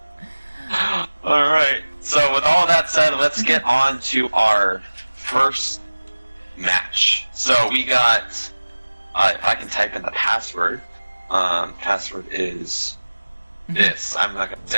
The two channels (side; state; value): both; inverted; correlation -1.00